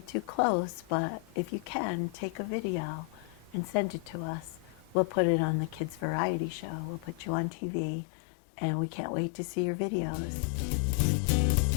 too close, but if you can, take a video and send it to us. We'll put it on the Kids Variety Show. We'll put you on TV, and we can't wait to see your videos.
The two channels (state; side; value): drops out; right; at 7.5 s